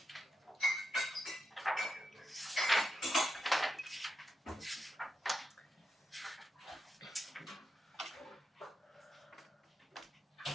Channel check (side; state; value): both; normal; correlation 0.86